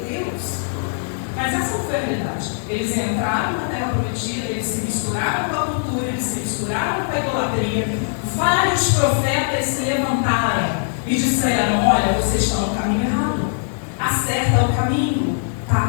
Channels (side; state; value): right; silent; digital silence